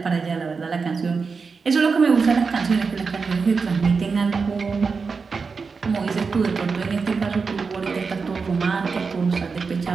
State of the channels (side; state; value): left; quieter; 4.9 dB